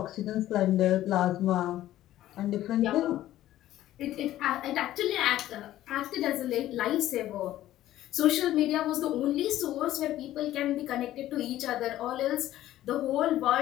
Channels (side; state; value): right; quieter; 13.9 dB